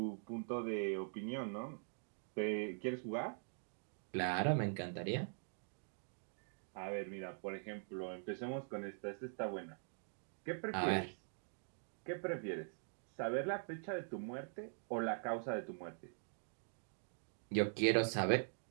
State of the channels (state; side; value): silent; left; digital silence